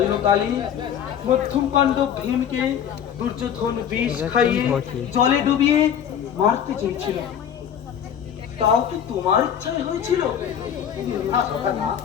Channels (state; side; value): quieter; right; 8.9 dB